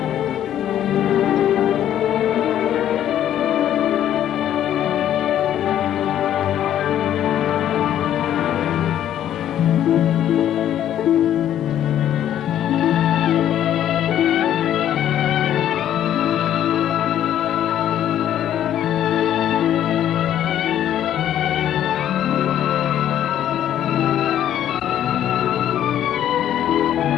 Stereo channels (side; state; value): right; quieter; 11.0 dB